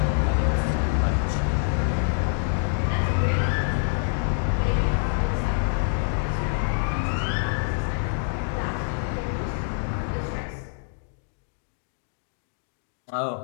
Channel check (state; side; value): silent; right; digital silence